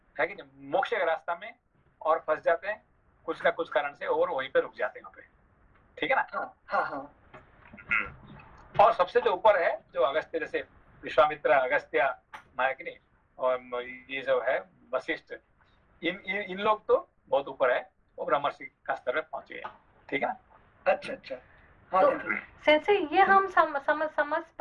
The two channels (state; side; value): identical; both; correlation 1.00